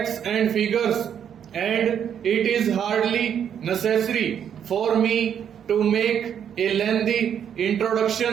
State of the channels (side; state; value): left; quieter; 8.7 dB